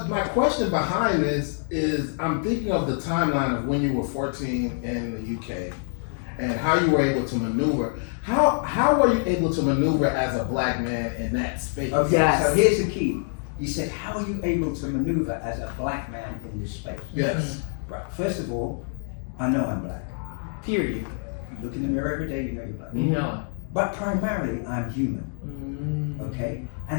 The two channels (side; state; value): right; silent; 61 dB below the other